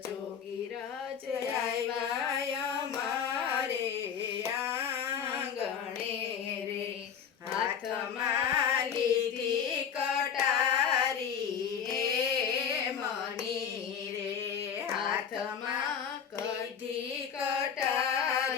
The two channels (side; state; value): right; quieter; 7.6 dB